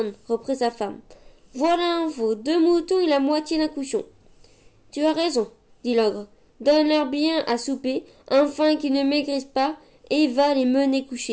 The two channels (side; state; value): both; identical; correlation 1.00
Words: reprit sa femme. Voilà un veau, 2 moutons et la moitié d'un cochon. »« Tu as raison, dit l'ogre. Donne-leur bien à souper, afin qu'ils ne maigrissent pas, et va les mener